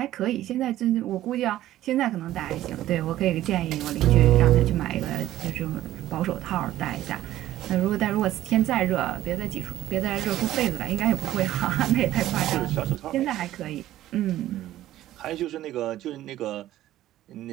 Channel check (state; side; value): quieter; left; 14.0 dB